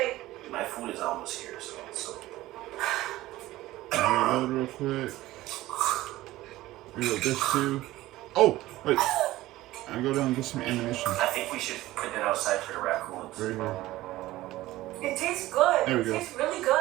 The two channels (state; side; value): quieter; left; 16.7 dB